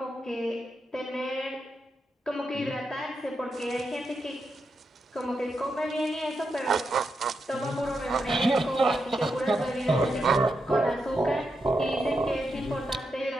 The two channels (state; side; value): normal; both; correlation 0.85